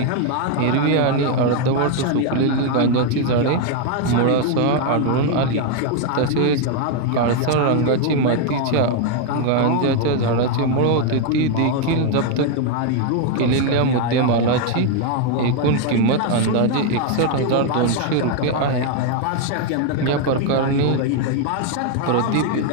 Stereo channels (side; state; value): both; different; correlation 0.01